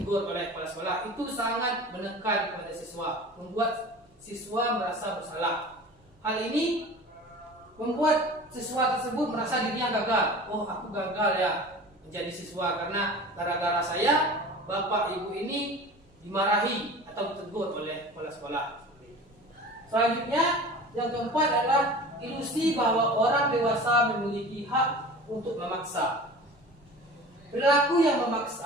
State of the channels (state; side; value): normal; both; correlation 0.38